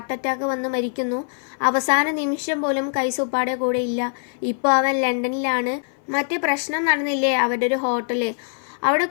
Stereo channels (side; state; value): right; silent; 58 dB below the other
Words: അറ്റാക്ക് വന്ന് മരിക്കുന്നു. അവസാന നിമിഷം പോലും കൈസ് ഉപ്പാടെ കൂടെ ഇല്ല. ഇപ്പോൾ അവൻ ലണ്ടനിലാണ്. മറ്റേ പ്രശ്നം നടന്നില്ലേ അവരുടെ ഒരു ഹോട്ടല്, അവിടെ